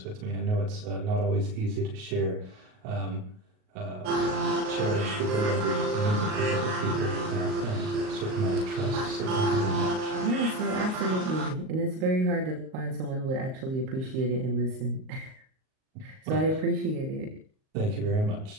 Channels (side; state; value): left; late; 38 ms